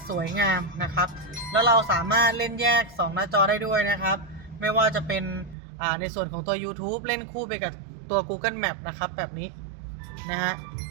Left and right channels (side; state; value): left; drops out; at 5.6 s